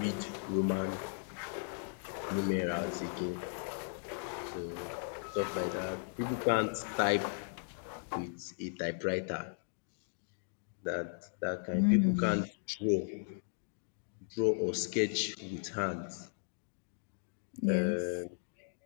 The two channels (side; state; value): right; silent; digital silence